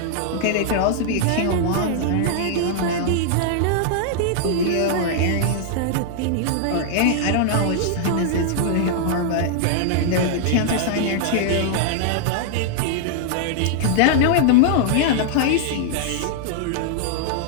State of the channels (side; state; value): both; different; correlation -0.01